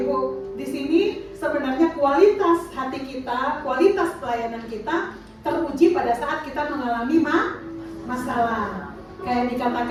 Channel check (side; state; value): both; identical; correlation 1.00